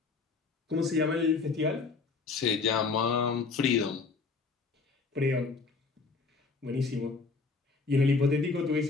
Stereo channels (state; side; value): quieter; right; 4.4 dB